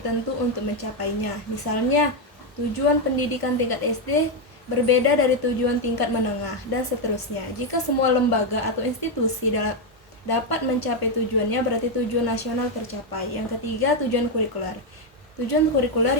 untuk mencapainya. Misalnya, tujuan pendidikan tingkat SD berbeda dari tujuan tingkat menengah, dan seterusnya. Jika semua lembaga atau institusi dapat mencapai tujuannya, berarti tujuan nasional tercapai. Yang ketiga, tujuan kurikuler. Tujuan kurikuler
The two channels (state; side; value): normal; both; correlation 0.04